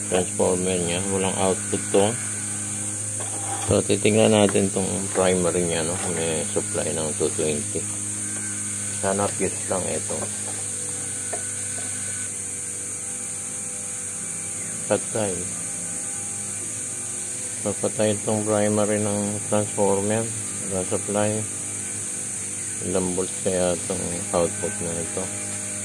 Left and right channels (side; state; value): both; identical; correlation 1.00